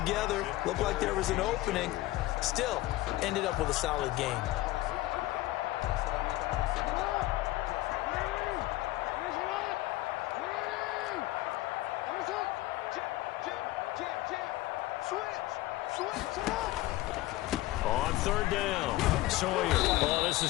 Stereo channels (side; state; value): right; quieter; 17.3 dB